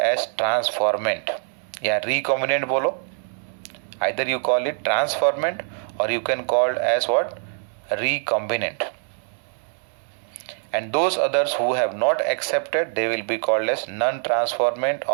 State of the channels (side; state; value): left; silent; 63 dB below the other